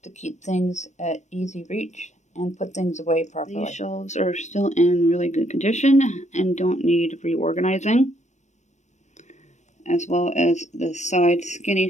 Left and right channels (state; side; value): late; right; 0.34 ms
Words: to keep things at easy reach and put things away properly. These shelves are still in really good condition and don't need reorganizing, as well as the side skinny